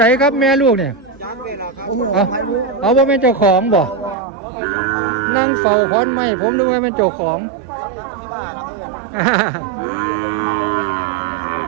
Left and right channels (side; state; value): left; drops out; at 4.2 s